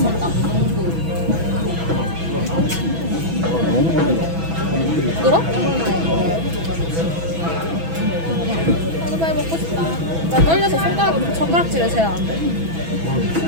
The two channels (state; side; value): late; left; 6.1 ms